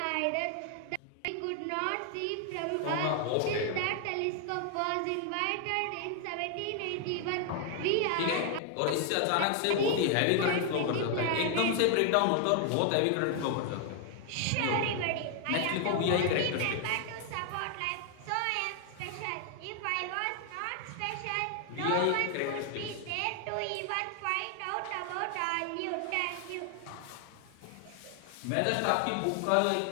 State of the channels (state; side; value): different; both; correlation 0.00